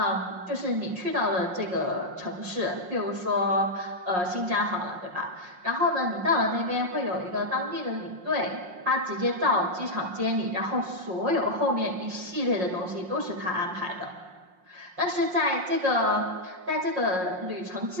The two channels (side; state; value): left; late; 5.5 ms